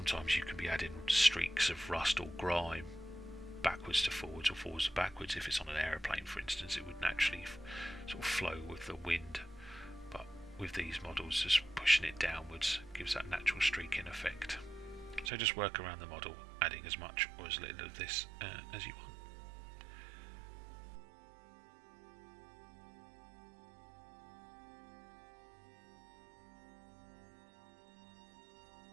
you can be adding streaks of rust or grime backwards to forwards or forwards to backwards. If it's on an aeroplane, for instance, it would naturally sort of flow with the wind. But with these models, just pushing it downwards gives that natural streaking effect. So just work around the model, adding as much or as little of this as you want.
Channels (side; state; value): left; drops out; at 15.3 s